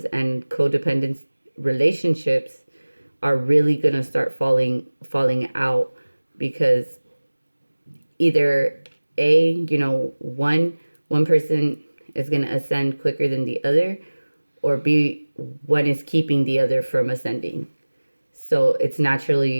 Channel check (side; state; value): both; inverted; correlation -1.00